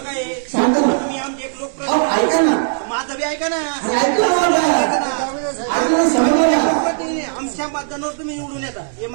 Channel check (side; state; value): left; silent; 63 dB below the other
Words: आहे? सांगा ना. तुम्ही आमचे एक लोक अहो, ऐका ना. माझं बी ऐका ना. अरे ऐका ना मला. ऐका ना, समजा ना. आमच्या मतदानावर तुम्ही निवडून येता हे